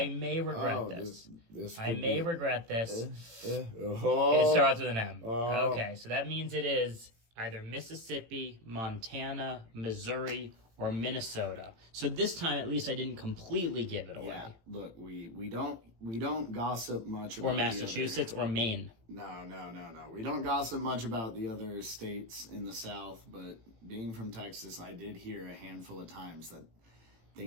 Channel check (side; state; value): left; late; 18 ms